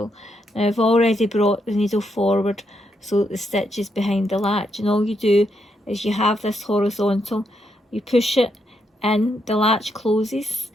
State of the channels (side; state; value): both; normal; correlation 0.79